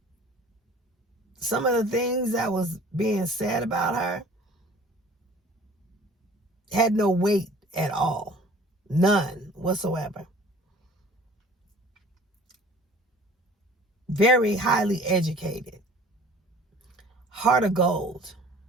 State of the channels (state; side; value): normal; both; correlation 0.48